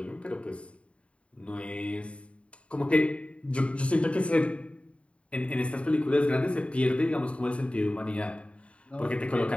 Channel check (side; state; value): right; late; 0.061 ms